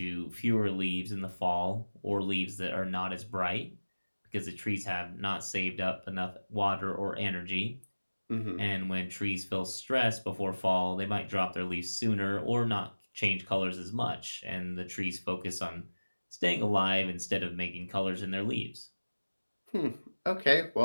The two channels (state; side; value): inverted; both; correlation -1.00